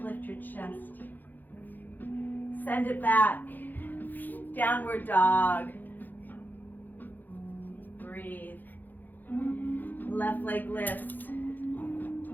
lift your chest. Send it back. Downward dog. Breathe. Left leg lifts.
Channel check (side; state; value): right; late; 0.086 ms